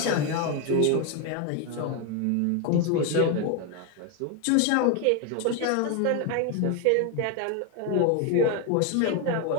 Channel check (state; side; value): different; both; correlation 0.01